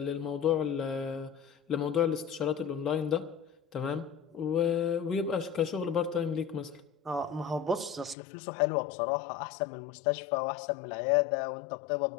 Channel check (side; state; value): right; drops out; at 8.2 s